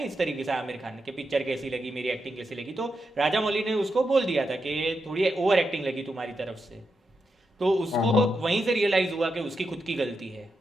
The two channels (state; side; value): normal; both; correlation 0.86